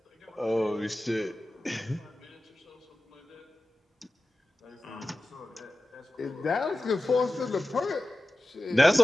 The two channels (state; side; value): normal; both; correlation 0.95